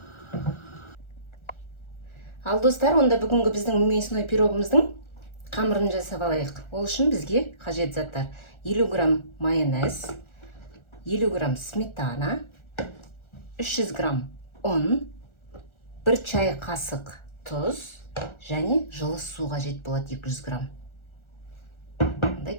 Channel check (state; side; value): late; right; 1.4 ms